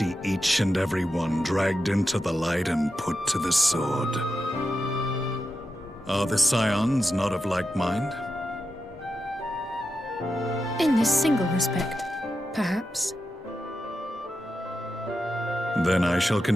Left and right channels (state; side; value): normal; both; correlation 0.89